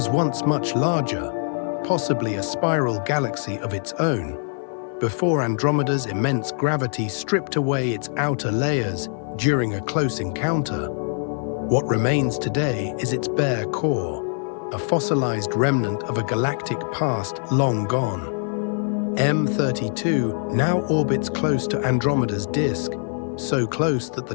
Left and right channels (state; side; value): silent; right; 55 dB below the other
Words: once much larger, possibly a spiral galaxy of its own, before Andromeda's immense gravity stripped away its outer layers during a close encounter. What remains today is its bare core, a fossilized remnant of a galactic past long gone. M32 now orbits close to Andromeda's disk, so close that the